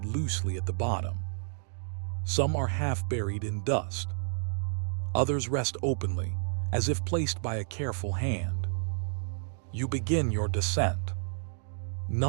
loosely at the bottom. Some are half buried in dust. Others rest openly, as if placed by a careful hand. You begin your descent.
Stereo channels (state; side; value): silent; left; digital silence